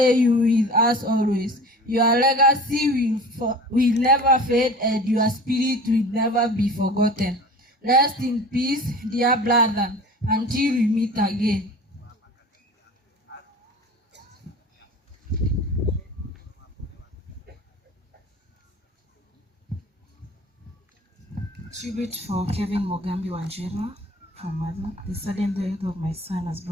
you with us always. Your legacy will never fade, and your spirit will never be forgotten. Rest in peace, dear brother, until we meet again. Tribute for Kevin Mogambi Wanjira from Mother. The sudden death of my son has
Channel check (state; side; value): normal; both; correlation 0.39